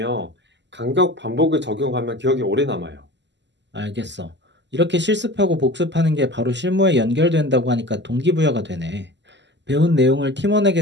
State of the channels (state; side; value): late; left; 0.52 ms